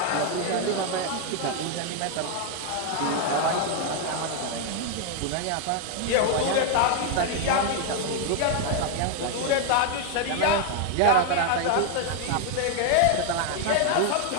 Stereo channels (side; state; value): both; different; correlation 0.00